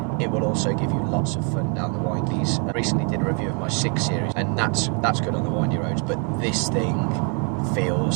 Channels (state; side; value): quieter; left; 38.2 dB